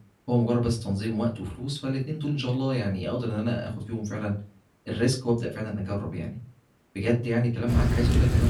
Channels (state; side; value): identical; both; correlation 1.00